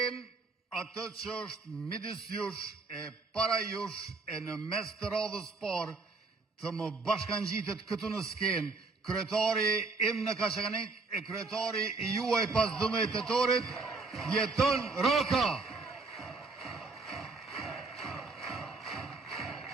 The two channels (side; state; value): left; quieter; 3.9 dB